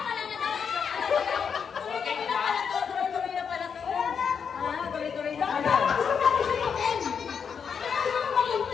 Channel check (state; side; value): quieter; right; 6.7 dB